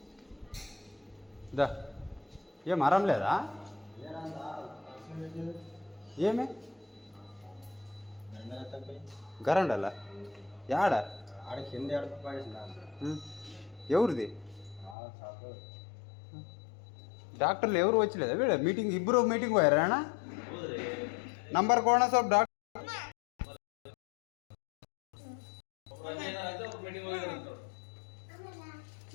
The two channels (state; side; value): drops out; right; at 15.0 s